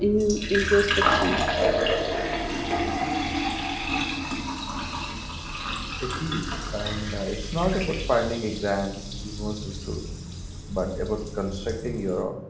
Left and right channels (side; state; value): both; identical; correlation 1.00